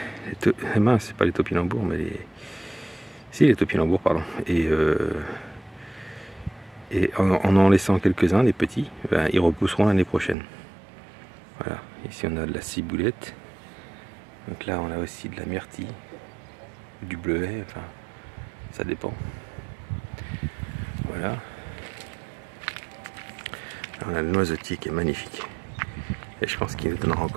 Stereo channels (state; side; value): drops out; left; at 10.4 s